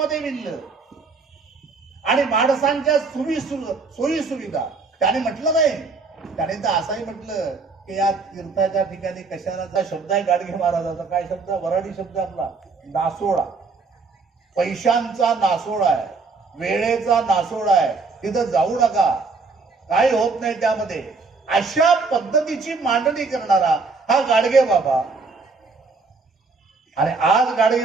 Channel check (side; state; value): left; quieter; 4.2 dB